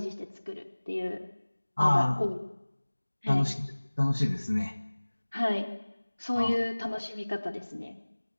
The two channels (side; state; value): both; inverted; correlation -1.00